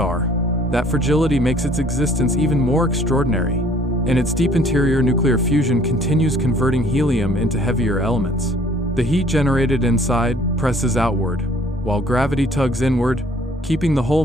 That fragility makes its existence even more extraordinary. In its deep interior, nuclear fusion continues, converting helium into heavier elements. The heat generated inside presses outward, while gravity tugs inward, keeping the whole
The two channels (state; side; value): normal; both; correlation 0.57